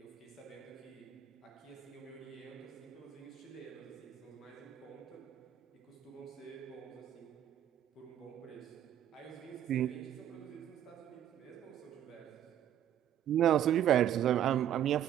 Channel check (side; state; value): left; quieter; 10.6 dB